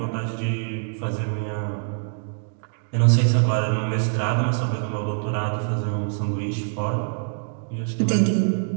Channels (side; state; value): left; silent; digital silence